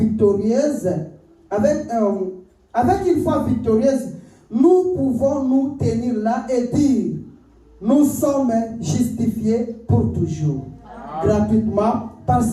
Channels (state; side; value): identical; both; correlation 1.00